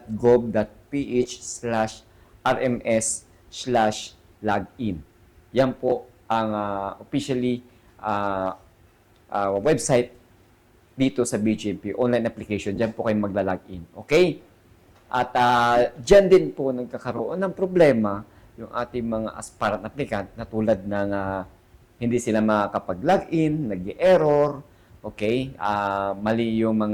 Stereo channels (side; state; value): both; identical; correlation 1.00